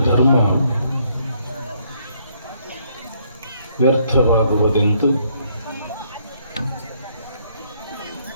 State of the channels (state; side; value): inverted; both; correlation -0.69